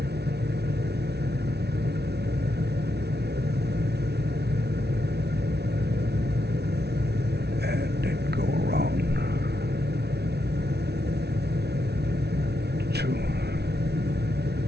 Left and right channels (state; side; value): late; left; 0.49 ms